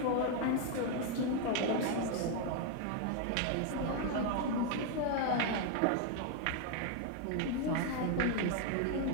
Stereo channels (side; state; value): both; different; correlation 0.01